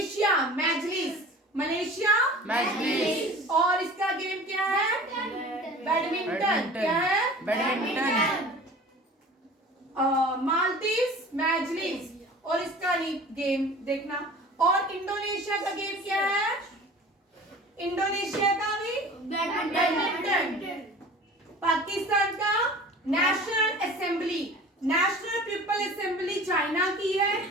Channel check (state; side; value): normal; both; correlation 0.41